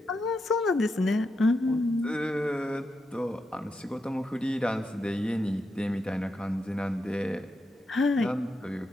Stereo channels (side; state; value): both; normal; correlation 0.85